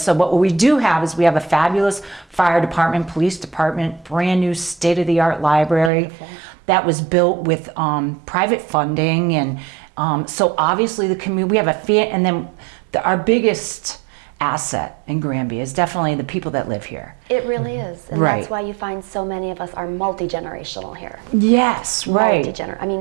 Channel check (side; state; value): left; drops out; at 5.9 s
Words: what we do have is we have a fabulous fire department, police department, brand new state-of-the-art library that was built with private funding, and so obviously the community. We have and then our biggest asset in Granby is definitely the people that live here. It really is. And Right. that's why you find so many of us are multi-generational here. Yes, right. I